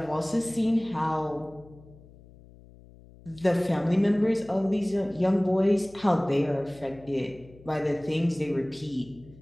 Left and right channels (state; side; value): noise; left; hum, 23 dB below the sound